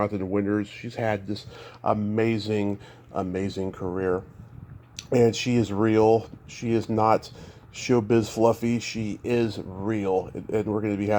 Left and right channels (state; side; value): identical; both; correlation 1.00